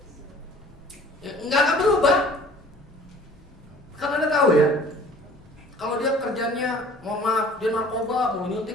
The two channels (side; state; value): both; normal; correlation 0.49